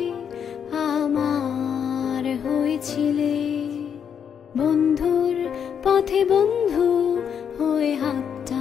আমার হয়েছিলে। বন্ধুর পথে বন্ধু হয়ে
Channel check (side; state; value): right; quieter; 7.8 dB